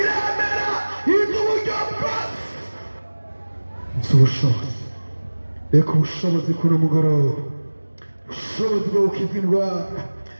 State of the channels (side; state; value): both; inverted; correlation -1.00